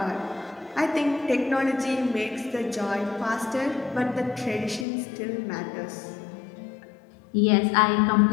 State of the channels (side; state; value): right; drops out; at 4.9 s